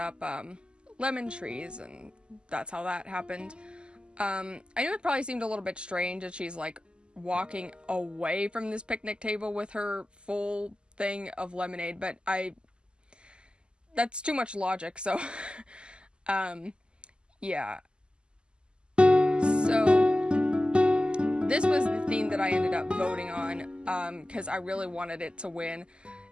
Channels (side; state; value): left; late; 0.050 ms